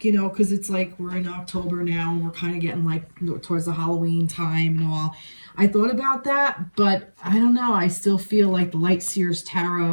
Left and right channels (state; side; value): inverted; both; correlation -1.00